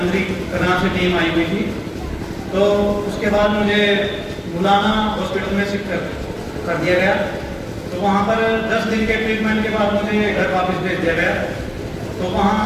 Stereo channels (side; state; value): both; identical; correlation 1.00